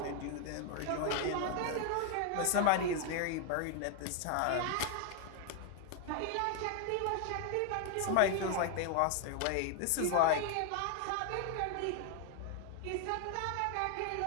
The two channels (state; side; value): different; both; correlation 0.01